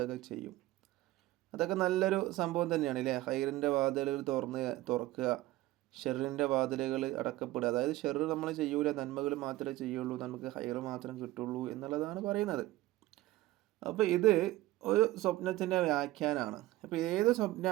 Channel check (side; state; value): left; quieter; 16.9 dB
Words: ചെയ്യും. അതൊക്കെ നല്ലൊരു സംഭവം തന്നെയാണ് അല്ലേ? ഖൈറിൻ്റെ വാതിലുകൾ തുറക്കുക, ഷെറിൻ്റെ വാതിലുകൾ അടക്കപ്പെടുക. അതായത് ഷെറ് നമ്മൾ ചെയ്യൂല, നന്മകൾ മാത്രമേ ചെയ്യുള്ളൂ, നമുക്ക് ഖൈറ് മാത്രം കിട്ടുള്ളൂ എന്നുള്ളതാണ് പറയുന്നത്. അപ്പോൾ ഇത് ഒരു സ്വപ്നത്തിൻ്റെ വ്യാഖ്യാനമാണ്. അപ്പോൾ ഏത്